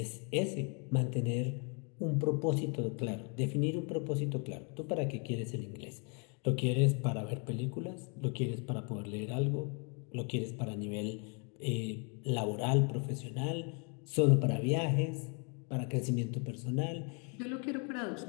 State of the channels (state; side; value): quieter; right; 36.7 dB